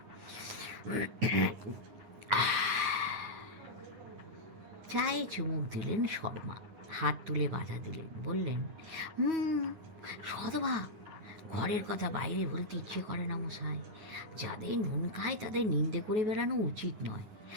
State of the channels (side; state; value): left; late; 9.9 ms